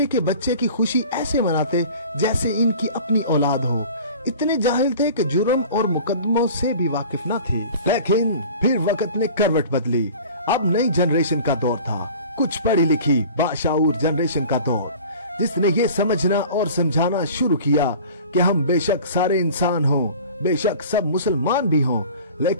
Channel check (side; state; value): both; inverted; correlation -0.42